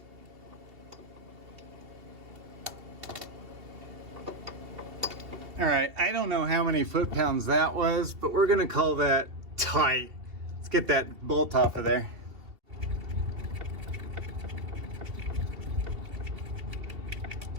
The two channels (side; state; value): left; late; 2.7 ms